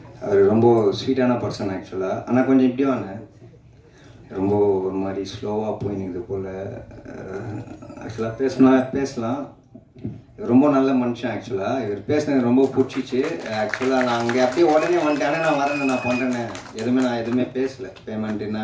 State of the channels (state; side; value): identical; both; correlation 1.00